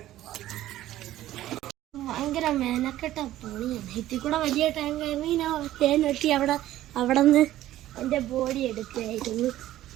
ഭയങ്കര മെനക്കെട്ട പണിയാണ്. ഇതിൽ കൂടെ വലിയ ടാങ്ക് ആയിരുന്നു. ഞാൻ തേൻ വെട്ടി അവിടെ നിന്ന് എൻ്റെ ബോഡി എടുക്കുകയായിരുന്നു.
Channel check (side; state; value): left; quieter; 14.1 dB